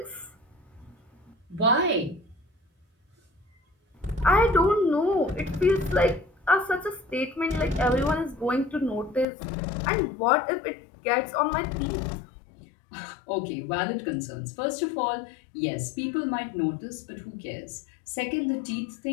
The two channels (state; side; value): drops out; right; at 9.2 s